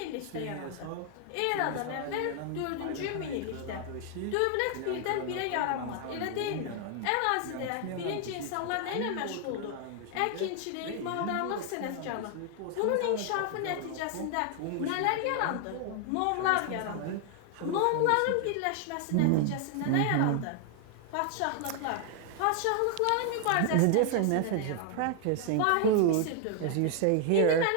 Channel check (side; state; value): both; different; correlation 0.00